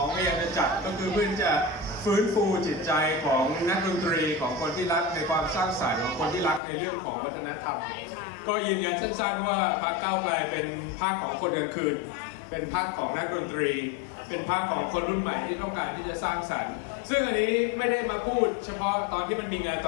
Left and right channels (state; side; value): drops out; right; at 6.6 s